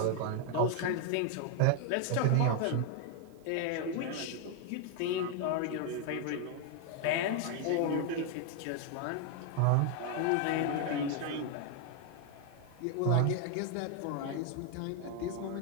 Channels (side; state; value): both; different; correlation 0.00